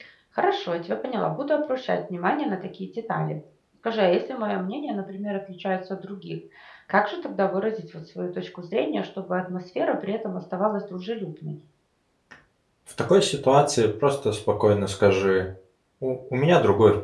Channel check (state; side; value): identical; both; correlation 1.00